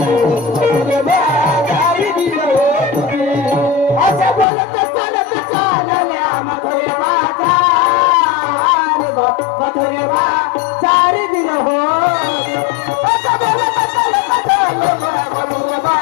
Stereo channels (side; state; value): right; drops out; at 4.5 s